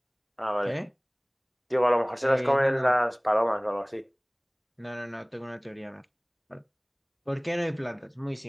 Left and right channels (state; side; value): identical; both; correlation 1.00